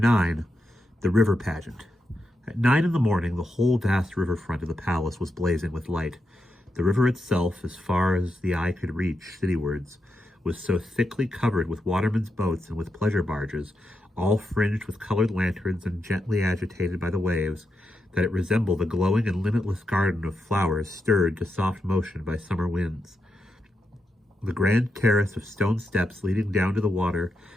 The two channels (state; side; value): normal; both; correlation 0.85